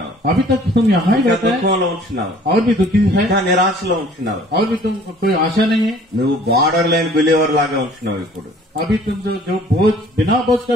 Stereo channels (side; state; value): both; normal; correlation 0.53